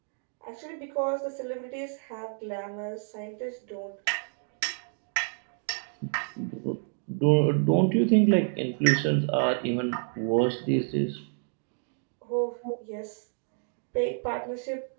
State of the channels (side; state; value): left; silent; 58 dB below the other